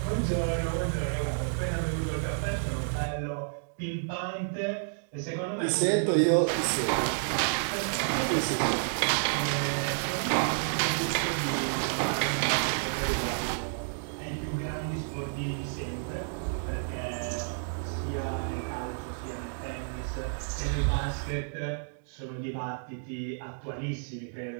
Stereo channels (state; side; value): silent; left; digital silence